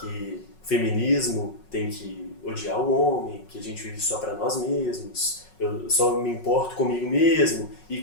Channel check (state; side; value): late; right; 5.4 ms